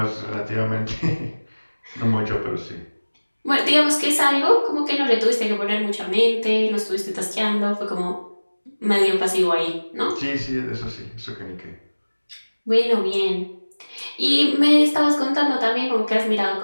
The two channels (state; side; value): inverted; both; correlation -1.00